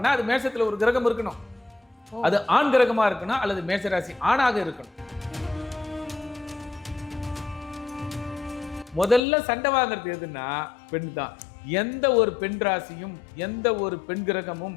அது மேஷத்துல ஒரு கிரகம் இருக்கணும். அது ஆண் கிரகமா இருக்கணும் அல்லது மேஷராசி ஆணாக இருக்கணும். முதல்ல சண்டை வாங்குறது எதுன்னா பெண் தான். எந்த ஒரு பெண் ராசியும் எந்த ஒரு பெண் கிரகமும்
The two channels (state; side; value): drops out; right; at 9.2 s